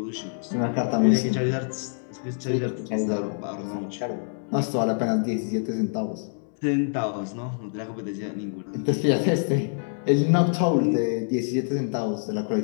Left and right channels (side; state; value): right; silent; digital silence